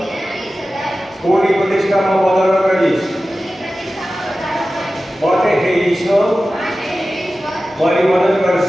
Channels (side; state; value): both; normal; correlation 0.95